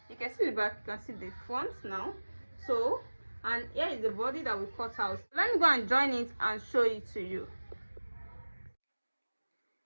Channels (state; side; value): inverted; both; correlation -1.00